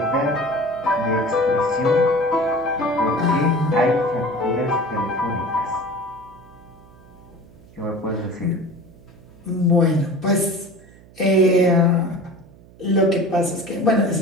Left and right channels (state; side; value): noise; right; hum, 24 dB below the sound